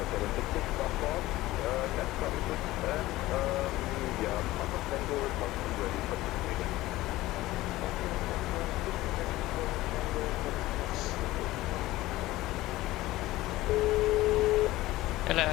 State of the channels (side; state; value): right; quieter; 17.4 dB